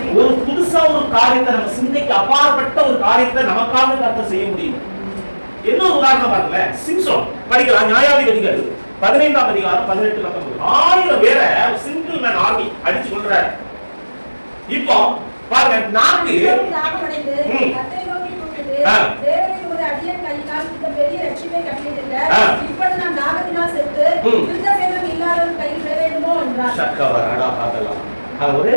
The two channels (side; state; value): both; inverted; correlation -1.00